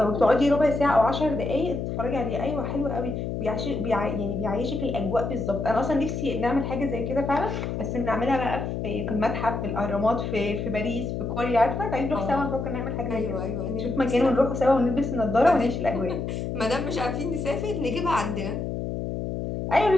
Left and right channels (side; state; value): left; noise; hum, 3 dB below the sound